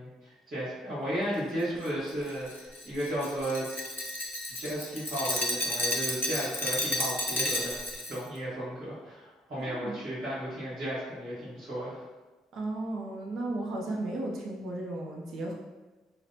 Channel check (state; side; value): normal; both; correlation 0.63